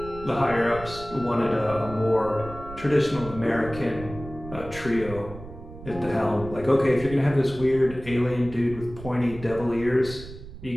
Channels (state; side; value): noise; right; rumble, 14 dB below the sound